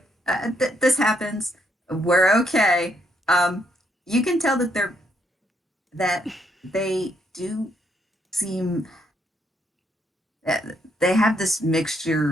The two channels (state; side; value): normal; both; correlation 0.74